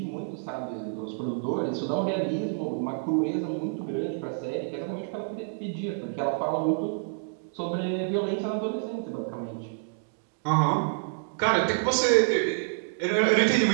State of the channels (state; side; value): silent; left; digital silence